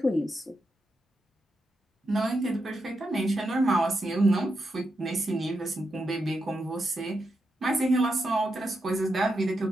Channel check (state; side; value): normal; both; correlation 0.85